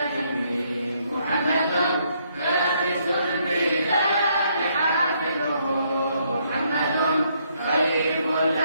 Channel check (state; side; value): inverted; both; correlation -0.72